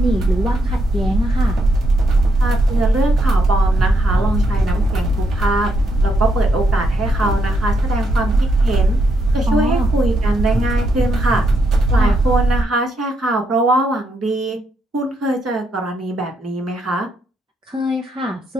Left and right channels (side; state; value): both; normal; correlation 0.78